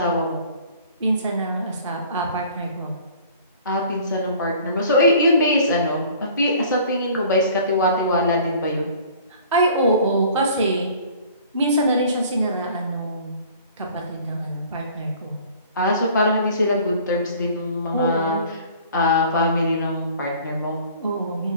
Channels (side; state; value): both; inverted; correlation -0.50